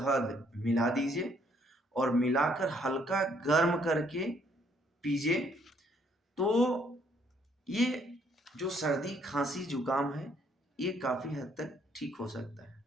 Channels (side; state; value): both; normal; correlation 0.67